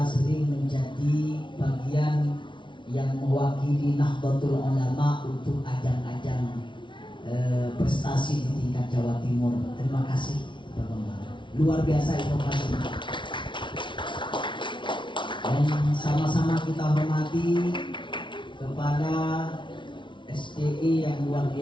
sering menjadi bagian yang mewakili Nahdlatul Ulama untuk ajang-ajang prestasi di tingkat Jawa Timur. Terima kasih Pak Bambang, luar biasa inovasi. Dan sama-sama kita hormati kepada SDI yang luar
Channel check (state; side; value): late; right; 0.24 ms